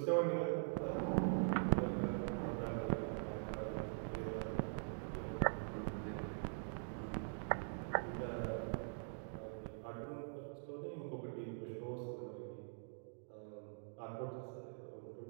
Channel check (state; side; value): silent; left; digital silence